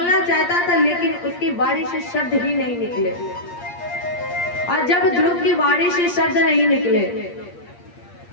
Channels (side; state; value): right; late; 8.6 ms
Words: चाहता था लेकिन उसकी बाड़ी से शब्द ही नहीं निकले। और जब ध्रुव की बाड़ी से शब्द नहीं निकले